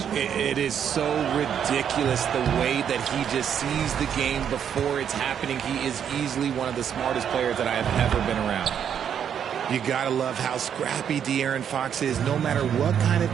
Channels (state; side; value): quieter; left; 8.5 dB